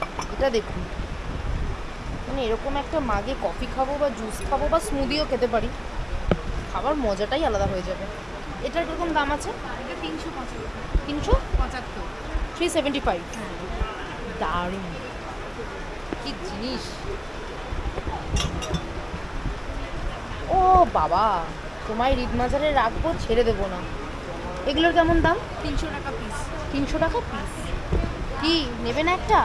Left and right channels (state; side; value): identical; both; correlation 1.00